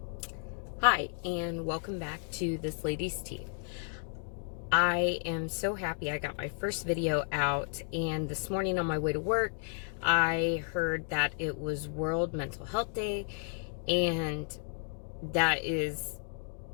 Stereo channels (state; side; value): silent; right; 56 dB below the other